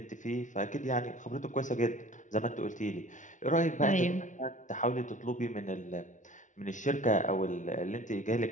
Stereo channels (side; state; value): right; late; 0.37 ms